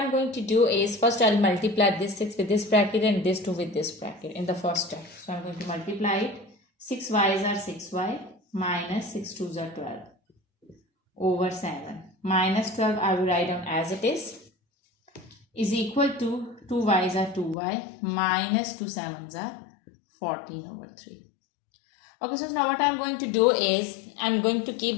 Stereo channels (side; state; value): right; drops out; at 17.6 s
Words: going to do is first I'll multiply this 6 with this bracket and this 2 with this bracket in the first step. So I'm going to multiply it. 6 y's are 6y minus 6 2's are 12 over 7 minus 12 I will write down as it is equal to 2 y's are 2y minus 2 7's are 14 over 3. Okay, so now what I'm going to do is I'm going to keep